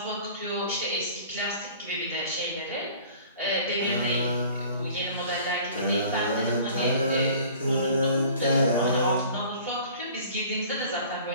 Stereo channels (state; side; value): inverted; both; correlation -0.48